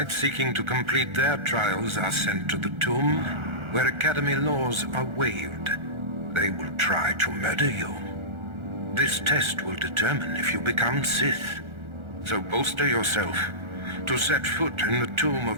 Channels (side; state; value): left; late; 1.4 ms